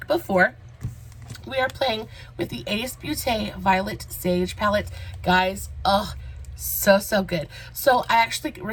before. We are playing with the Beaute Violet Sage palette. Guys, oh, so good. So I actually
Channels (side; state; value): both; identical; correlation 1.00